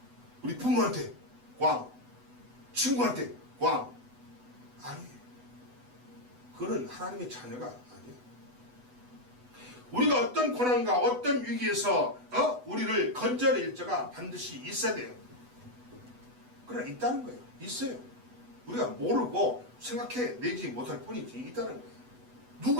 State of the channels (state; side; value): late; left; 8.0 ms